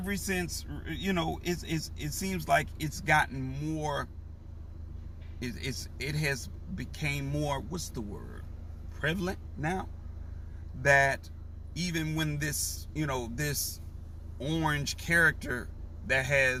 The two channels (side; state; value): both; identical; correlation 1.00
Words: since, you know, it seems like it's gotten more, it has became more, what's the word, prevalent now, that even when this, you know, this orange character that